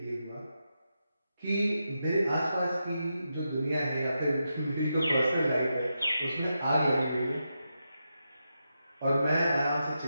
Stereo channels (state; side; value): inverted; both; correlation -0.86